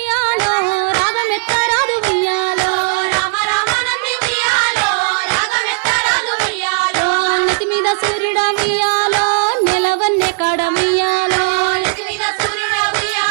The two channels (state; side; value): silent; left; 69 dB below the other